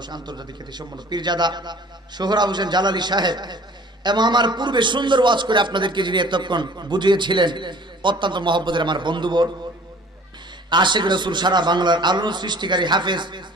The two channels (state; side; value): normal; both; correlation 0.49